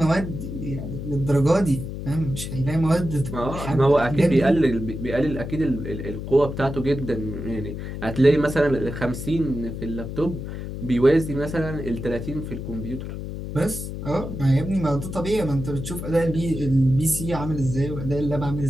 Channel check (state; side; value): noise; left; hum, 7 dB below the sound